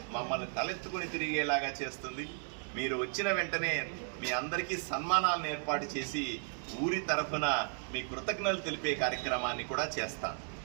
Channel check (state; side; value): silent; left; 54 dB below the other